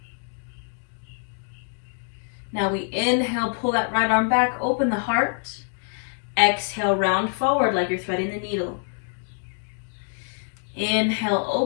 Now we inhale, pull that right arm back, open the heart. Exhale, round forward like you're threading the needle. Inhale,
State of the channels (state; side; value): silent; right; 62 dB below the other